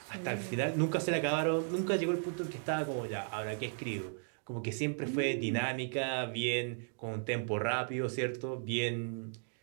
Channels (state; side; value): silent; left; digital silence